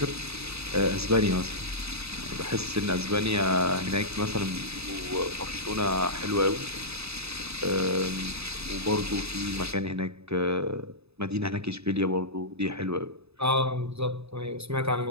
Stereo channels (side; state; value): left; late; 0.79 ms